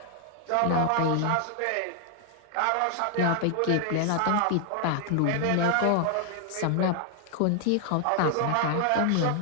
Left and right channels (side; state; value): both; different; correlation 0.00